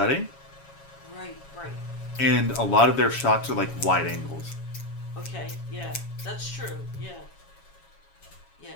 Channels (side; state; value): right; late; 7.2 ms